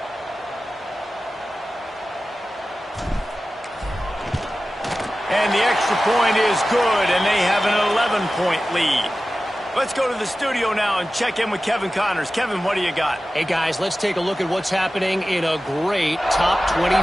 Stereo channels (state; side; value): normal; both; correlation 0.95